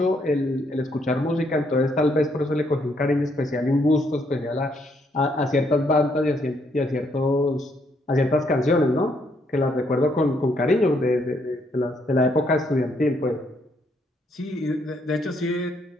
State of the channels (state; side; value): normal; both; correlation 0.72